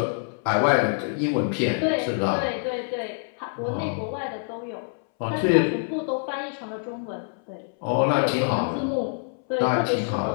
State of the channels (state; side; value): silent; right; 61 dB below the other